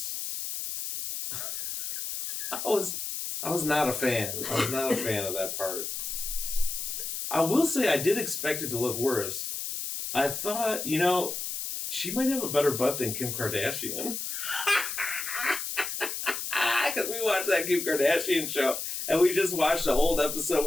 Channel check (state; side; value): noise; left; hiss, 4 dB below the sound